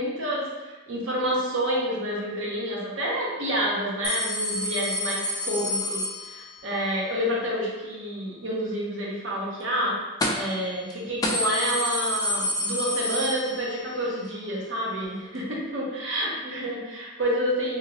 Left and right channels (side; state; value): both; normal; correlation 0.01